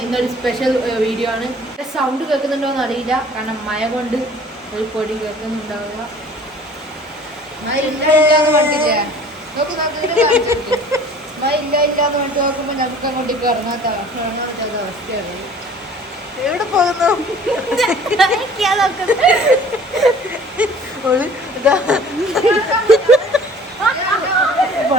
ഇന്നൊരു സ്പെഷ്യൽ വീഡിയോ ആണ്. സൗണ്ട് കേൾക്കുന്നുണ്ടോയെന്ന് അറിയില്ല, കാരണം മഴ കൊണ്ട് ഒരു പൊടി കേൾക്കുന്നുണ്ടാവുക. മഴ ഇല്ലാന്ന് പറഞ്ഞില്ലേ, മഴ ഇല്ലാന്ന് വേണ്ടി നോക്കുമ്പോൾ നമുക്ക് അങ്ങോട്ടേക്ക് ഇറങ്ങാത്ത അവസ്ഥയാണ്. എവിടെ പോകുന്നു?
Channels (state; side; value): normal; both; correlation 0.49